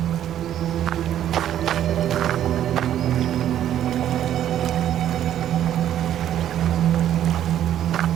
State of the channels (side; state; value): left; quieter; 11.0 dB